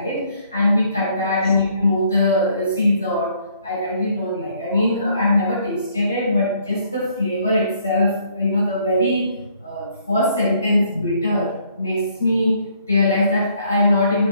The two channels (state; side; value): inverted; both; correlation -0.65